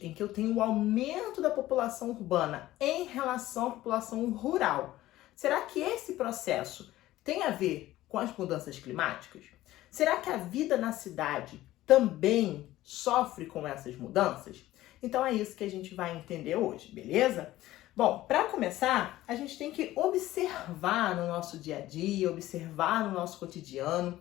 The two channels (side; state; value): right; quieter; 15.6 dB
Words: em que eu tenho o aumento da população urbana em relação à população rural, será que esse processo tem a ver com as mudanças climáticas? Será que a vida na cidade também sofre com essas mudanças? Então é isso que a gente vai entender hoje, beleza? Bom, para começar, a gente tem que observar no nosso dia a dia, observar no nosso cotidiano,